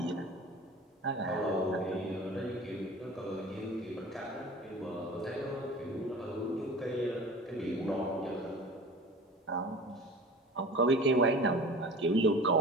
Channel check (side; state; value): both; normal; correlation 0.39